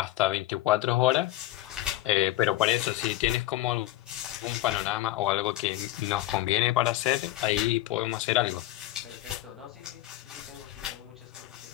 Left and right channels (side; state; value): right; quieter; 15.6 dB